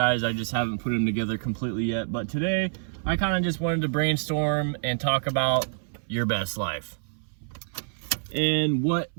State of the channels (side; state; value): left; silent; 60 dB below the other